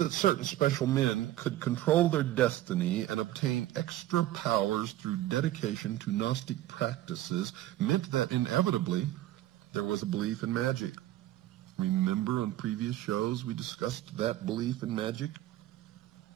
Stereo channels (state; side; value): quieter; left; 14.5 dB